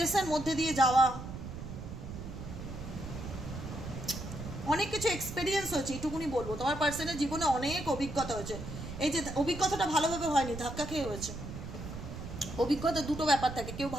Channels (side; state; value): right; noise; rumble, 9 dB below the sound